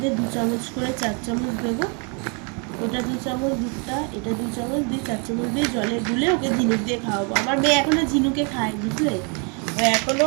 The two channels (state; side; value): quieter; left; 36.1 dB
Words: 2 চামচ করে 4 চামচ দেবো। ওটা 2 চামচ দুধটা, এটা 2 চামচ দিয়ে 4 চামচ দিয়ে জলে গুলে ওকে ঝিনুক দিয়ে খাওয়াবো। আমার মেয়ে এখনো ঝিনুকে খায়, বুঝলে? ও